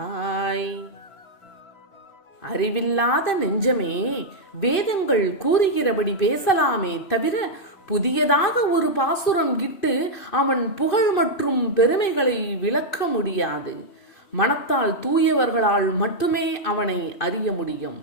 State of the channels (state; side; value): late; right; 2.6 ms